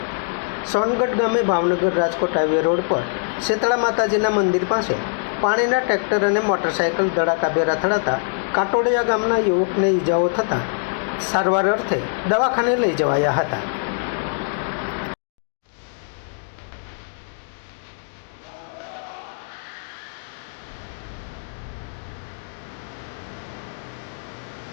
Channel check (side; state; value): right; silent; digital silence